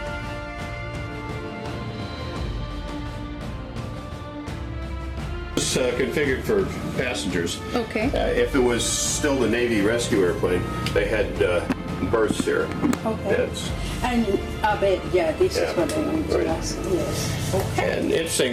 It's configured for passengers. Okay. If it was still the Navy rescue airplane, they had berths here. Okay. Beds. And a bed, yeah, this Yeah, is what I want to right. ask. Yes. Okay. And interesting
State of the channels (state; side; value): identical; both; correlation 1.00